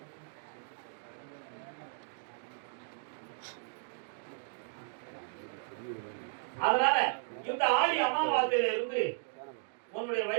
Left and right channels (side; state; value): left; silent; digital silence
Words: அதனால இந்த ஆடி அமாவாசையில இருந்து உன்னுடைய